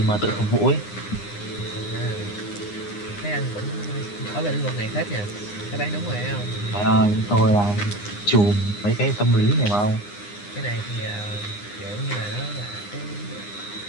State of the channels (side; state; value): right; late; 9.8 ms